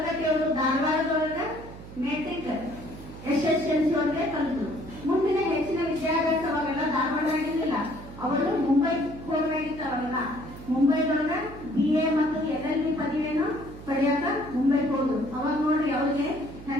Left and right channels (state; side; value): noise; right; hum, 15 dB below the sound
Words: ಧಾರವಾಡದೊಳಗೆ ಮೆಟ್ರಿಕ್ SSLC ಒಳಗೆ ಕಲಿತರು. ಮುಂದಿನ ಹೆಚ್ಚಿನ ವಿದ್ಯಾಭ್ಯಾಸ ಅವಾಗೆಲ್ಲ ಧಾರವಾಡಾಗಿರ್ಲಿಲ್ಲ, ಅವರು ಮುಂಬೈ ಹೋಗಬೇಕಿತ್ತು. ಅವಾಗೆಲ್ಲ ಮುಂಬೈದೊಳಗ BA ಮತ್ತು LLB ಪದವಿಯನ್ನು ಪಡೆಯಾಕ ಮುಂಬೈಗೆ ಹೋದ್ರು. ಅವಾಗ ನೋಡ್ರಿ ಅವ್ರಿಗೆ